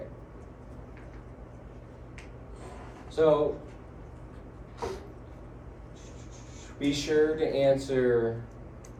So be sure to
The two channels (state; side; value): identical; both; correlation 1.00